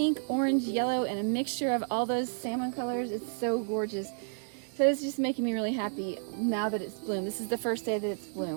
orange, yellow, and a mixture of all those salmon colors. It's so gorgeous. So it's just making me really happy now that it's bloomed. This is the first day that it's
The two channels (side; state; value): left; silent; digital silence